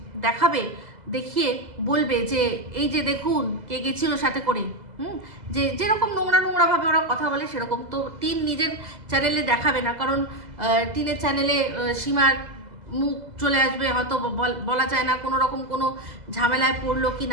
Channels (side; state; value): left; late; 2.0 ms